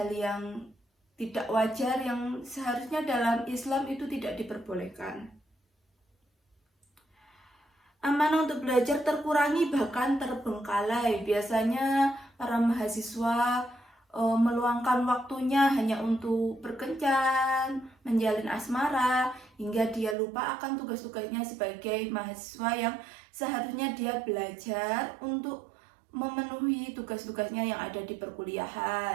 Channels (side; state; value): left; drops out; at 20.2 s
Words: yang tidak wajar yang seharusnya dalam Islam itu tidak diperbolehkan. Amanah untuk belajar terkurangi bahkan terbengkalai. Biasanya para mahasiswa meluangkan waktunya hanya untuk berkencan, menjalin asmara, hingga dia lupa akan tugas-tugasnya sebagai mahasiswa yang seharusnya dia belajar untuk memenuhi tugas-tugasnya yang ada di